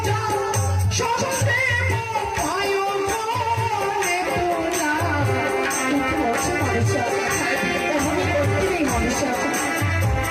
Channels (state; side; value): identical; both; correlation 1.00